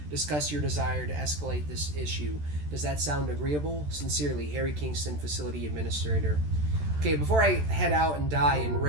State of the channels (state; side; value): late; left; 14 ms